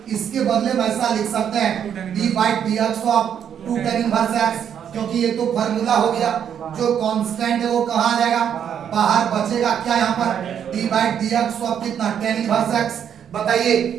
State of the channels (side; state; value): left; quieter; 8.7 dB